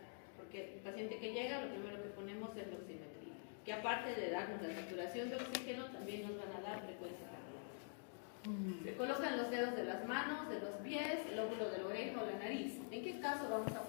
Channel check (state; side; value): silent; right; digital silence